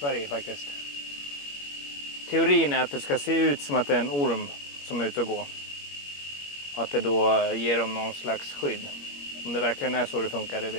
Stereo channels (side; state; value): right; late; 21 ms